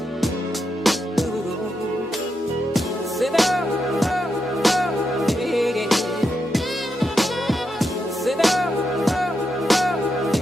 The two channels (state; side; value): normal; both; correlation 0.84